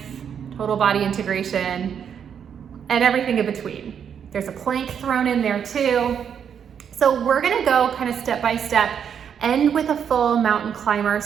total body integration, and everything in between. There's a plank thrown in there too. So we're gonna go kind of step by step, end with a full mountain climber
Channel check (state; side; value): quieter; left; 7.9 dB